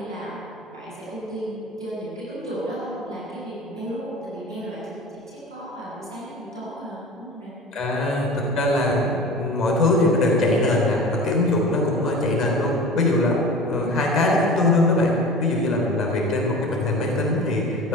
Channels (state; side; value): normal; both; correlation 0.37